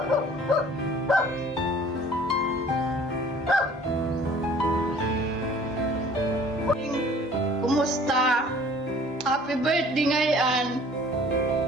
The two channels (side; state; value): both; normal; correlation 0.51